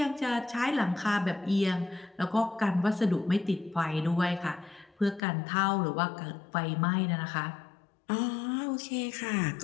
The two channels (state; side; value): drops out; right; at 5.2 s